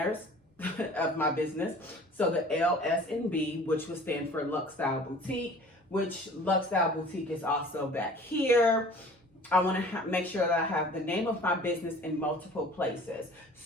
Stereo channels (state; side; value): normal; both; correlation 0.47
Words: of my business. So the L, S, and B, which would stand for Lux Style Boutique, which Lux Style Boutique is also back here. I want to make sure that I have the name of my business in multiple places.